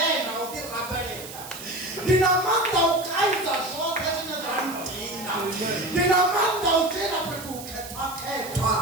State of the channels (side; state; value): right; noise; hiss, 13 dB below the sound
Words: utirapelera. Ndina manda ukaidza zvote zvine zvandina. Ndina manda ujena petu uketwa.